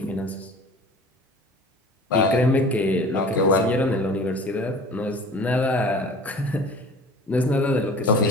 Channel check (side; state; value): both; normal; correlation 0.43